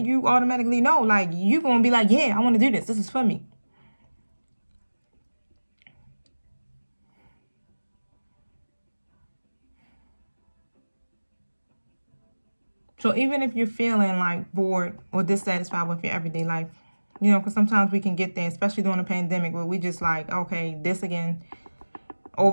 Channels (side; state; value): both; inverted; correlation -1.00